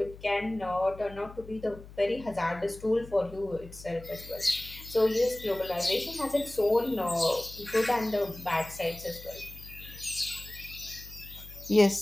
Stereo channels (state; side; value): noise; left; hum, 17 dB below the sound